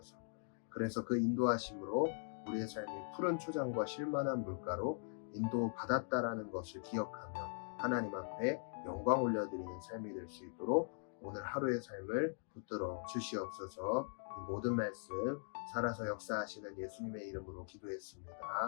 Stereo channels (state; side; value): silent; right; digital silence